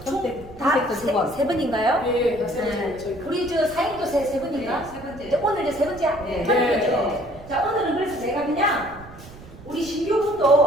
세 번인가요? 예, 다 세 번째. 네. 저희 우리 저 사인도 세 번인가? 네, 세 번째. 이제 오늘 이제 세 번째 네. 편이죠. 자, 오늘은 그래서 제가 그냥 우리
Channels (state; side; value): noise; right; rumble, 19 dB below the sound